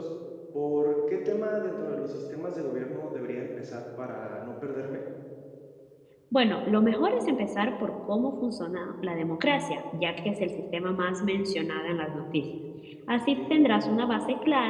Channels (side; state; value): both; identical; correlation 1.00